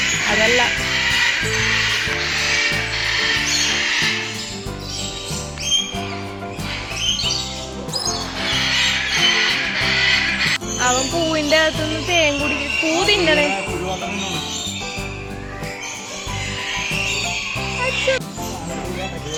അതല്ല അവൻ പൂവിന്റെ അകത്തുനിന്ന് തേൻ കുടിക്കും. പൂ തിന്നണേ.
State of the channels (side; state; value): both; identical; correlation 1.00